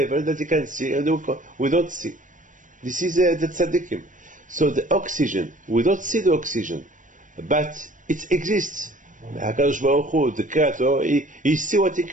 that they can see, and we don't see. This is the tzaddikim. So the oxygen, we don't see the oxygen, but it exists. HaKadosh Baruch Hu, the Creator, he see what he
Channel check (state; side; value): late; left; 0.37 ms